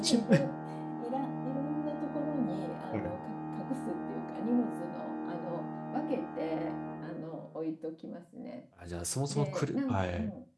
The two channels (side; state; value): both; identical; correlation 1.00